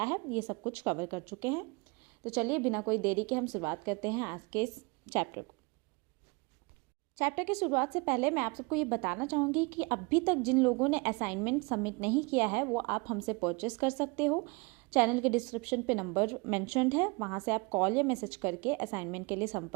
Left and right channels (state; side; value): quieter; left; 28.4 dB